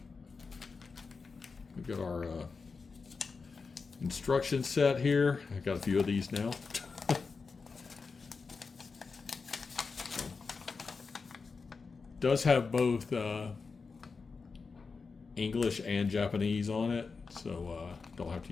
got our instruction set here. I've got a few of these now. Does have both English and Japanese on it, so don't have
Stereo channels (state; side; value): quieter; right; 4.7 dB